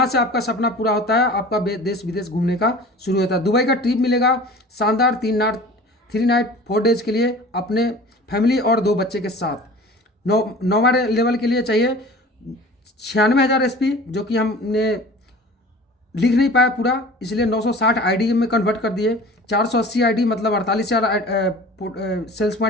से आपका सपना पूरा होता है, आपका देश विदेश घूमने का शुरू होता है। दुबई का ट्रिप मिलेगा शानदार 3 नाइट 4 डेज के लिए अपने फैमिली और 2 बच्चे के साथ। 9वां लेवल के लिए चाहिए 96,000 एसपी, जो कि हमने लिख नहीं पाया पूरा, इसलिए 960 आईडी में कन्वर्ट कर दिए। 480 आईडी मतलब 48,000 सेल्स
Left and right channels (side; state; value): both; normal; correlation 0.42